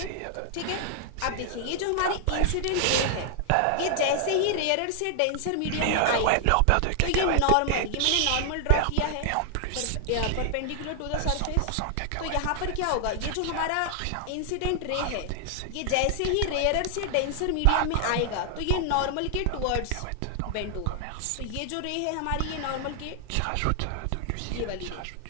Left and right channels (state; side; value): different; both; correlation 0.00